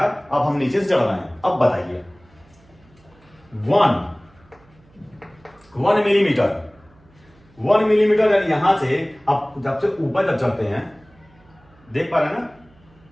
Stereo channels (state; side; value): noise; right; hum, 29 dB below the sound